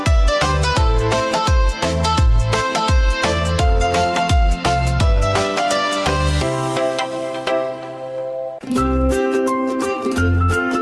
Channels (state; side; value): identical; both; correlation 1.00